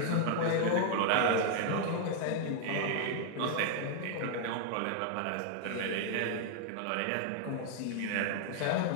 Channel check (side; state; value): both; different; correlation 0.00